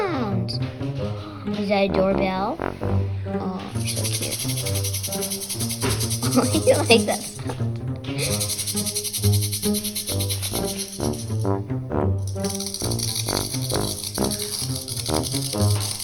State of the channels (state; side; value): identical; both; correlation 1.00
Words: Is that a doorbell? Oh, so cute. Oh, you like that sound?